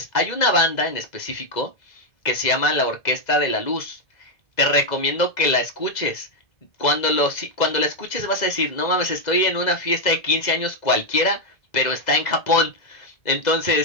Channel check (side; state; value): right; late; 2.0 ms